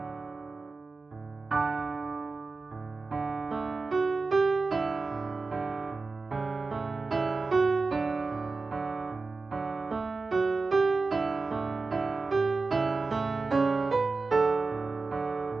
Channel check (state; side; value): quieter; left; 4.0 dB